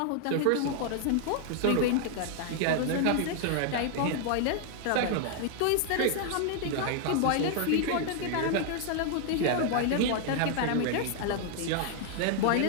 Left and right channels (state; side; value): different; both; correlation 0.00